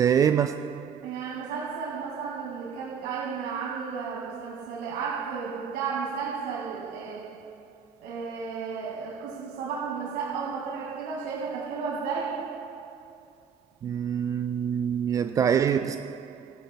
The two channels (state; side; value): quieter; left; 7.1 dB